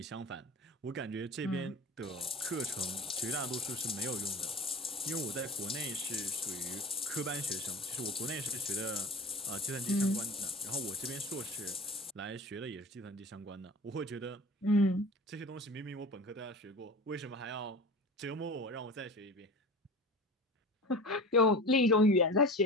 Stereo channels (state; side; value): normal; both; correlation 0.35